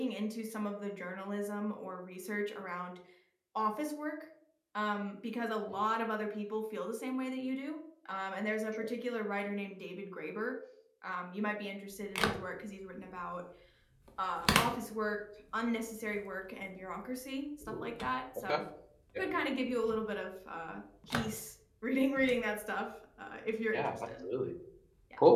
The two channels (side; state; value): both; identical; correlation 1.00